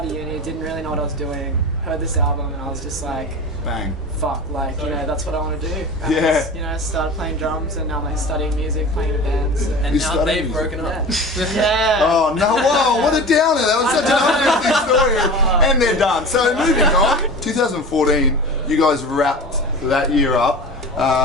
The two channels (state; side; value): normal; both; correlation 0.34